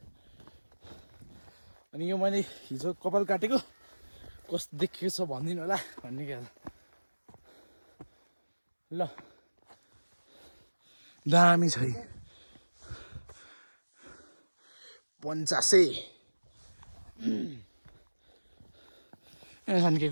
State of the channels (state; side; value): inverted; both; correlation -1.00